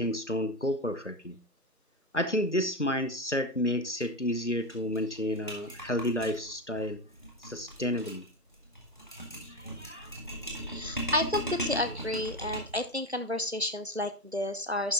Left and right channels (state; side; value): normal; both; correlation 0.17